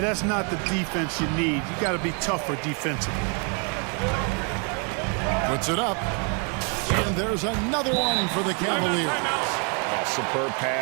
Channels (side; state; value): left; quieter; 37.3 dB